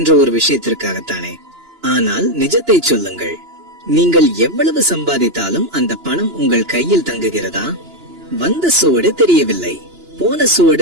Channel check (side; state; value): left; late; 2.9 ms